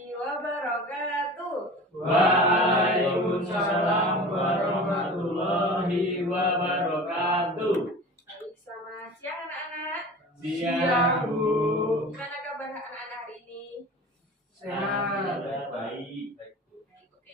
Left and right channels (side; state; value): both; normal; correlation 0.37